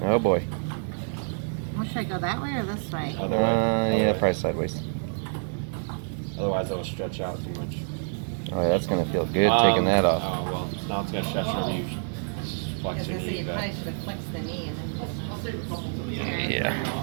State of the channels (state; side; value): silent; left; 60 dB below the other